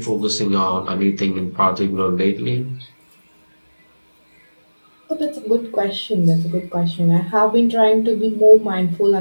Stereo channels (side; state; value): both; inverted; correlation -1.00